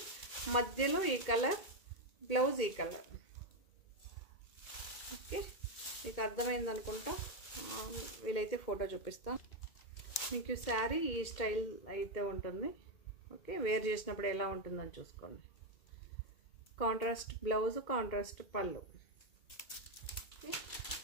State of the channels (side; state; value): right; late; 2.1 ms